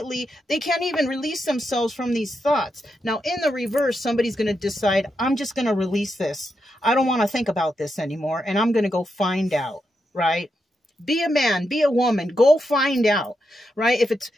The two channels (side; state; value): both; normal; correlation 0.85